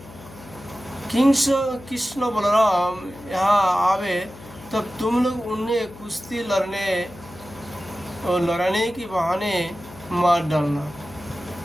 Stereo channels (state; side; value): noise; left; hum, 19 dB below the sound